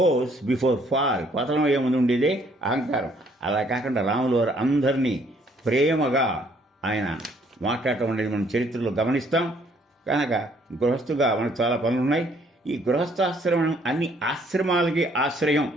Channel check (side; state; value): both; normal; correlation 0.64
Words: బిఫోర్ ఫాల్, పతనం అయ్యే ముందు ఉండేదే అహంకారం. అలా కాకుండా రాములు వారు అందరినీ ప్రేమగా ఆయన మాట్లాడటం అనేది మనం చరిత్రలో గమనిస్తాం. కనుక గృహస్థుగా మనకు చాలా పనులు ఉన్నాయి. ఈ గృహస్థాశ్రమం అన్ని ఆశ్రమాలకి ఆశ్రయం